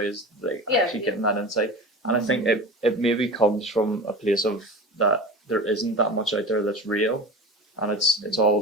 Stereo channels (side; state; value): both; normal; correlation 0.31